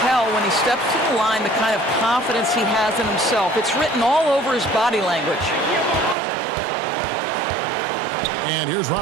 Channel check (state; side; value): drops out; left; at 6.2 s